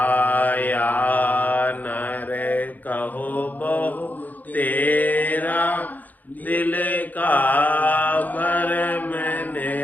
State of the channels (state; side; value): late; right; 0.082 ms